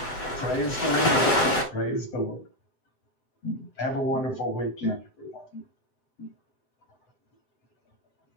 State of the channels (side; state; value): right; late; 8.1 ms